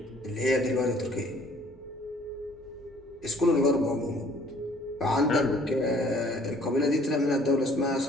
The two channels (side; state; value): both; normal; correlation 0.57